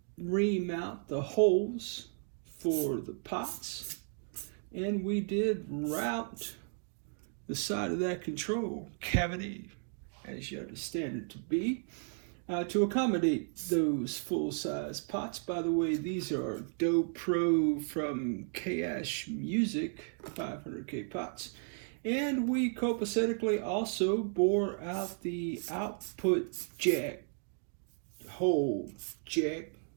ream out the holes for the pots, and we did route the side of that control cavity, as you understand it to be, to accommodate those full-size pots. By the way, these are Do Pro from K-Ash Music 500K pots. And we copacetically also bore out the output jack hole jack.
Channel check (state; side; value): silent; left; 55 dB below the other